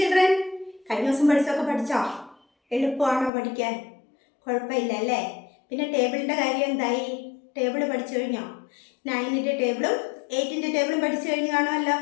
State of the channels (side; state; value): right; drops out; at 3.3 s